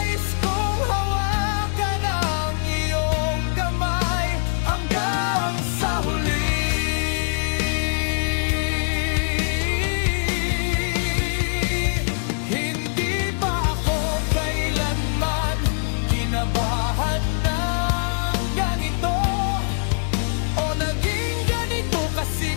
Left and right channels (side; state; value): right; silent; digital silence